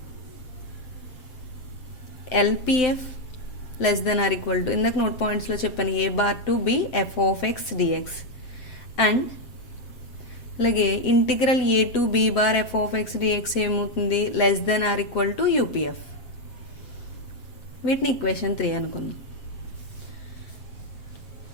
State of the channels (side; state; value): right; late; 7.8 ms